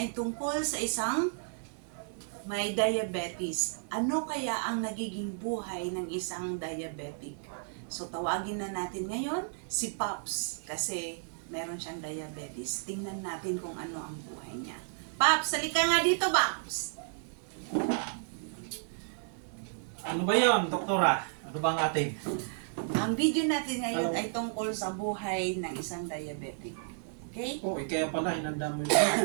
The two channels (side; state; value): left; silent; digital silence